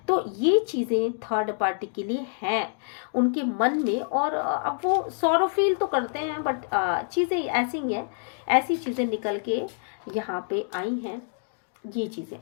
तो ये चीज़ें थर्ड पार्टी के लिए हैं उनके मन में। और अब वो सॉरो फील तो करते हैं बट चीज़ें ऐसी हैं, ऐसी चीज़ें निकल के यहाँ पे आई हैं ये चीज़ें।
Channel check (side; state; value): right; silent; digital silence